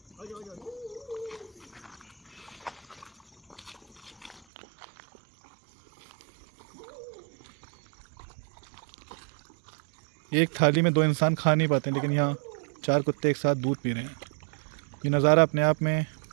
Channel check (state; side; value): drops out; left; at 4.5 s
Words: एक थाली में 2 इंसान खा नहीं पाते, लेकिन यहाँ 4 कुत्ते एक साथ दूध पी रहे हैं। ये नज़ारा अपने आप में